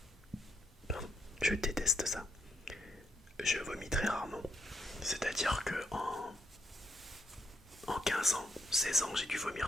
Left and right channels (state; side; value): normal; both; correlation 0.76